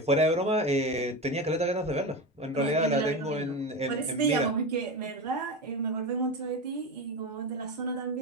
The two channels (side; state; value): both; normal; correlation 0.21